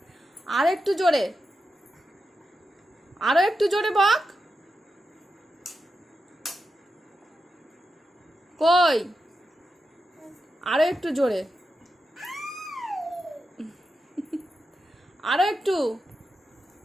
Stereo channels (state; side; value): normal; both; correlation 0.89